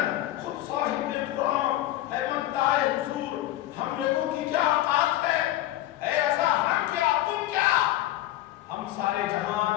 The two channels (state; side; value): quieter; right; 14.7 dB